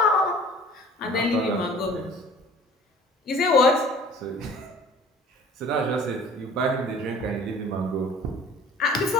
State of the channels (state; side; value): normal; both; correlation 0.48